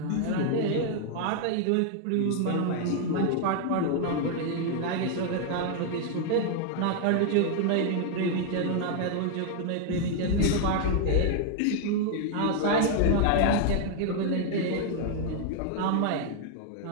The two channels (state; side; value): different; both; correlation 0.00